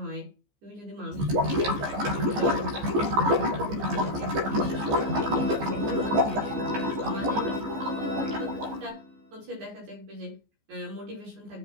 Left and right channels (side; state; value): left; late; 15 ms